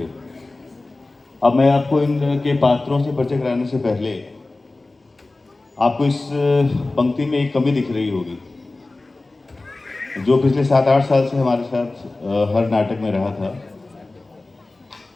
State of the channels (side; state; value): right; quieter; 3.1 dB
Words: अब मैं आपको इनके पात्रों से परिचय कराने से पहले आपको इस पंक्ति में एक कमी दिख रही होगी जो पिछले 7-8 साल से हमारे साथ हर नाटक में रहा था।